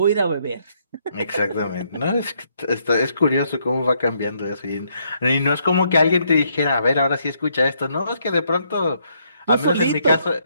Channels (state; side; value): inverted; both; correlation -0.72